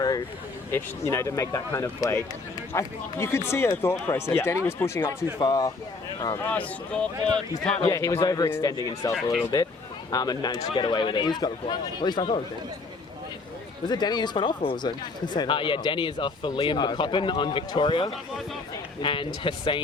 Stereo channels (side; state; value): right; quieter; 3.8 dB